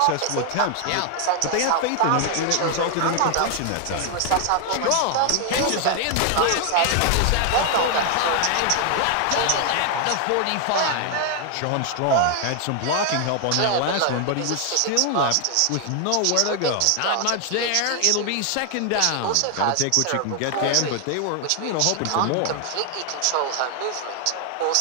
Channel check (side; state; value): both; different; correlation 0.00